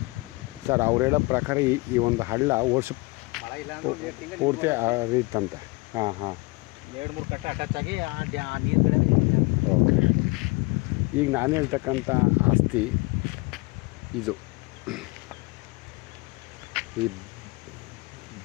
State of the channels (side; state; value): right; quieter; 25.9 dB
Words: ಸರ್ ಅವ್ರು ಹೇಳೋ ಪ್ರಕಾರ ಈ ಒಂದು ಹಳ್ಳ ವರ್ಷ ಪೂರ್ತಿ ಹರಿಯುತ್ತಂತೆ. ಹಾಂ ಹಾಂ, 2-3 ಕಟ್ಟ ಅಟ್ಯಾಚ್ ಆಗಿ ಆ ನೀರುಗಳೇ. ಓಕೆ. ಈಗ ನಾನು ಹೇಳ್ತಕ್ಕಂಥ ಆಸ್ತಿ ಇದು. ಈ